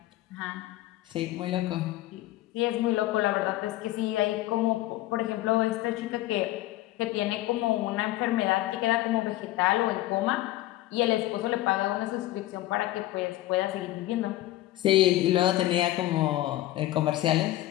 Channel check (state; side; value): quieter; right; 15.9 dB